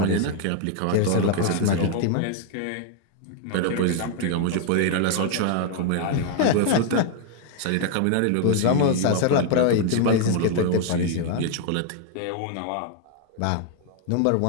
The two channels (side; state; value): both; different; correlation 0.00